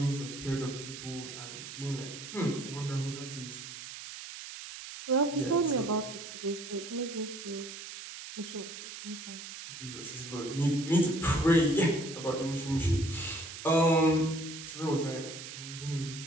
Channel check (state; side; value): noise; right; hiss, 11 dB below the sound